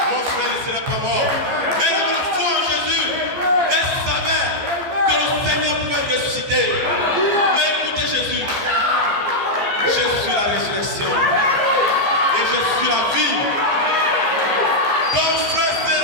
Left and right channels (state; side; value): late; left; 14 ms